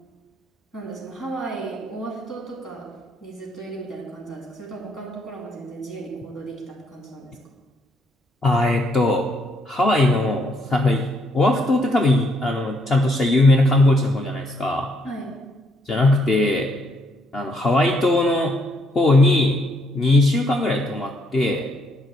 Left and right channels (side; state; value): both; normal; correlation 0.72